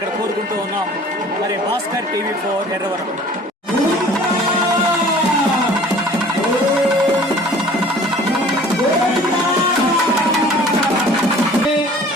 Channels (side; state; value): both; normal; correlation 0.49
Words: కోరుకుంటూ ఉన్నాం. మరి భాస్కర్ టీవీ4 ఎర్రవరం.